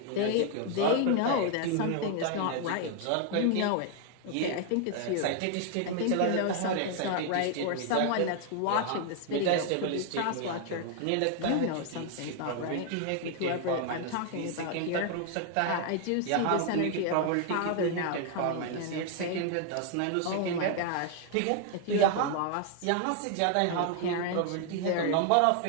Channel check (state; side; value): different; both; correlation 0.00